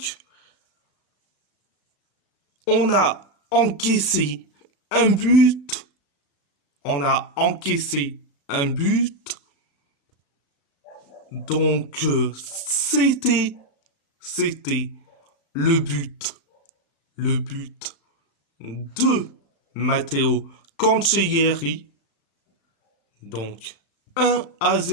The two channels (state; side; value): late; right; 35 ms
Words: On a encaissé un but. On a encaissé un but. Donc, c'était le but de Matteo Cancellieri. Donc,